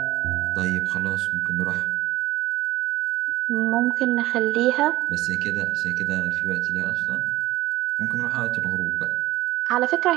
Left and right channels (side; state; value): left; quieter; 16.5 dB